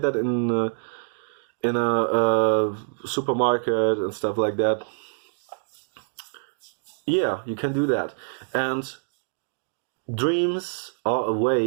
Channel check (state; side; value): silent; left; digital silence